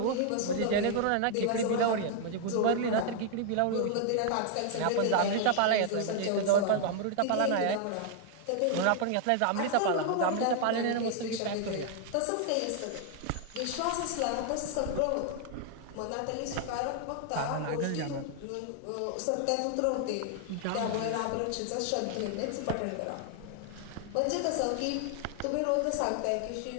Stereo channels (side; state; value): both; different; correlation 0.00